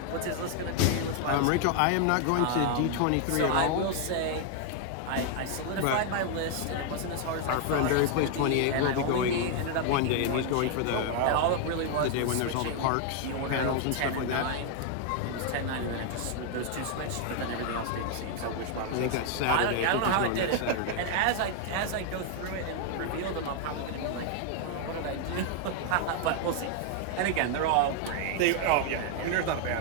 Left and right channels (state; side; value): different; both; correlation 0.00